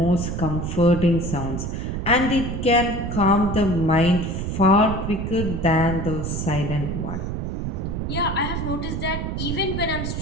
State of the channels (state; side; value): noise; right; rumble, 3 dB below the sound